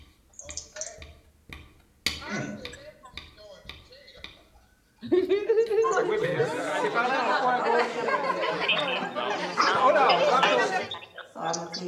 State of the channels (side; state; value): both; identical; correlation 1.00